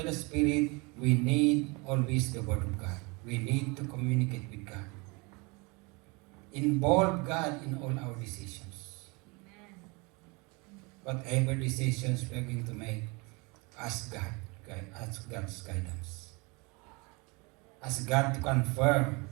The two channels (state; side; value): quieter; left; 28.2 dB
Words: the Spirit, we need always the Word of God. We need to communicate with God. Involve God in all our decisions. Whatever decisions we are going to make, ask God, ask God's guidance. Ask God to confirm